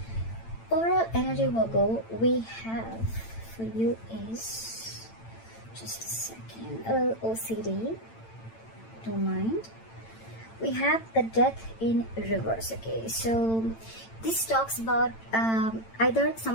Overall energy, Virgo, we have for you is just a second. OCD. Don't mind. We have the death in reverse. Okay, so this talks about either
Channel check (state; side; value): late; right; 8.9 ms